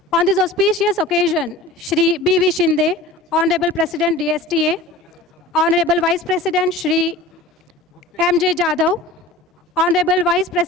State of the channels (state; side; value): normal; both; correlation 0.39